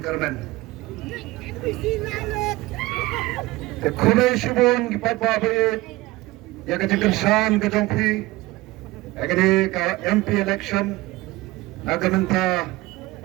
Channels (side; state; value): left; quieter; 19.9 dB